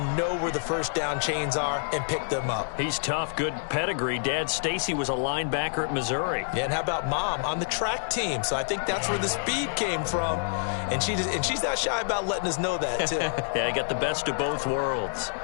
know where the first down chains are and pick them up. He's tough, good pedigree. Dad, Stacy, was a linebacker at Missouri. Yeah, and how about Mom on the track team? So I think that's where the speed came from. And she's not shy about letting us know that, too. Yeah, he got the best of both worlds.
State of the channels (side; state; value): right; silent; digital silence